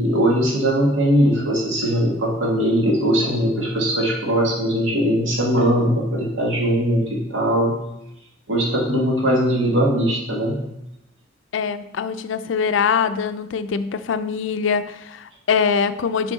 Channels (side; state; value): both; normal; correlation 0.37